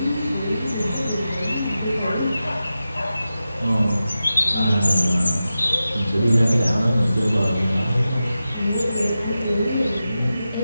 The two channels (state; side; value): inverted; both; correlation -0.93